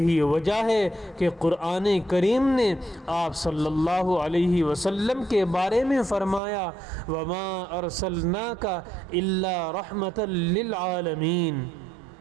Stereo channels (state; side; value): drops out; left; at 6.4 s